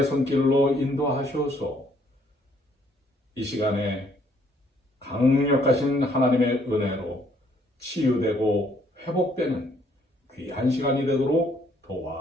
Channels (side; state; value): both; normal; correlation 0.66